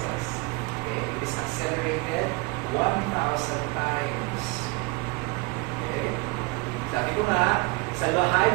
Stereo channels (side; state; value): left; quieter; 26.6 dB